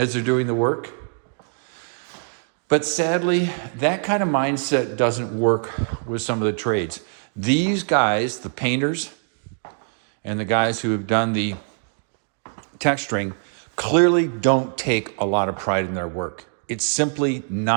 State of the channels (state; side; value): silent; left; 63 dB below the other